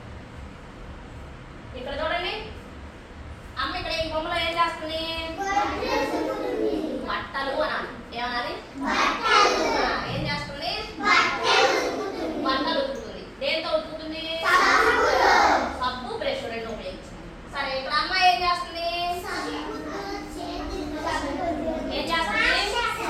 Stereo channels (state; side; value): identical; both; correlation 1.00